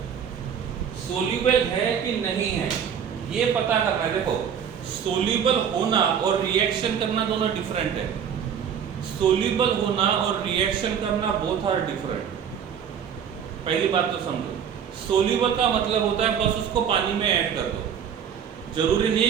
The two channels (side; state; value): left; quieter; 8.0 dB